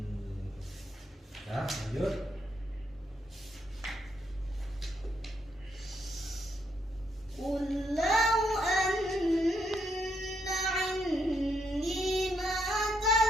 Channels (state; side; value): normal; both; correlation 0.75